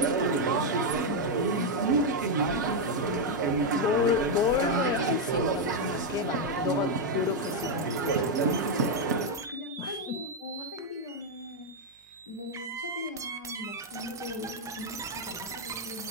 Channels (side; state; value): both; normal; correlation 0.01